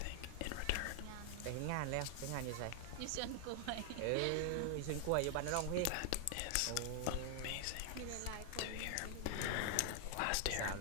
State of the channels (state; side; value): different; both; correlation 0.00